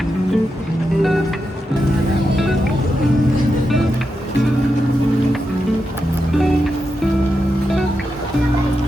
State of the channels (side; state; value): both; normal; correlation 0.87